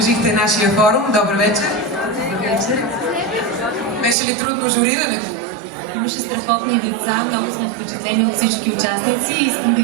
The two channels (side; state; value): left; drops out; at 4.2 s